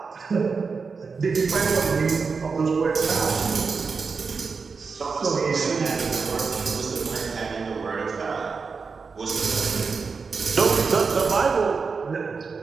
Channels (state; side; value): quieter; left; 5.0 dB